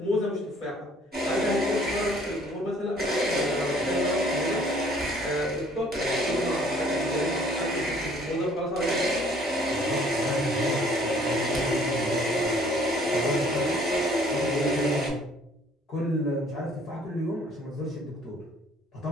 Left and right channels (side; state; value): both; normal; correlation 0.58